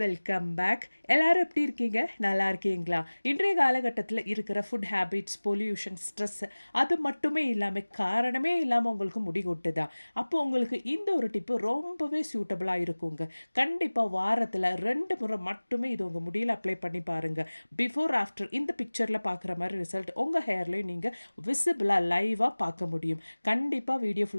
welcome back. எல்லாரும் எப்படி இருக்கீங்க? நல்லா இருக்கீங்களா? இன்றைய காலகட்டத்தில் இருக்கிற ஃபுட் ஹேபிட்ஸ், பொல்யூஷன், ஸ்ட்ரெஸ் அது மட்டுமே இல்லாமல் காரணமே இல்லாமல் உங்களுக்கு முடி கொட்டுதா? அப்போ உங்களுக்கு இந்த ஒரு டிப்பு ரொம்பவே சூட்டபுளாக இருக்குங்க. கண்டிப்பாக வாரத்தில் 2 முறை மட்டுமே இது உங்கள் முடியில் அப்ளை பண்ணி பாருங்கள். பிஃபோர் ஆஃப்டர் இந்த பிக்சரில் பார்க்குற மாதிரி ரிசல்ட் உங்கள் ஹேர்லேயும் நீங்கள் விசிபிளாக லைவாக பார்க்க முடியும். கண்டிப்பாக வீடியோ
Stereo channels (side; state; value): both; inverted; correlation -1.00